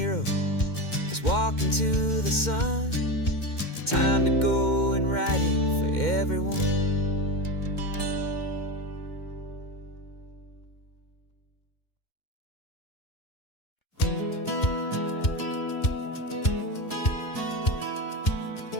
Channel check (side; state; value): right; late; 2.1 ms